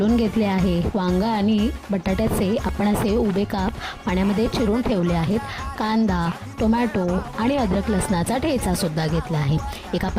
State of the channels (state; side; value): identical; both; correlation 1.00